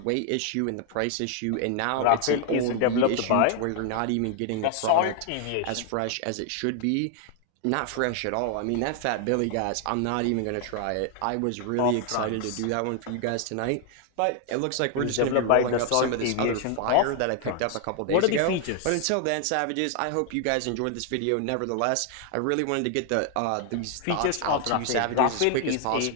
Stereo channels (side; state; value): both; different; correlation 0.00